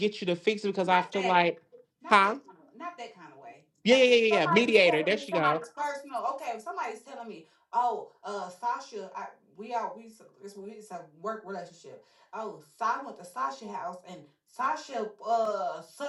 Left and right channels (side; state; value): both; identical; correlation 1.00